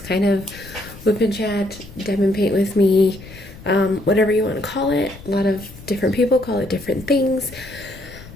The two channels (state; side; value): noise; left; rumble, 17 dB below the sound